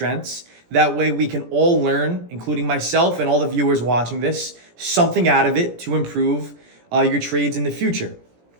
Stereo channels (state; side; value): late; left; 17 ms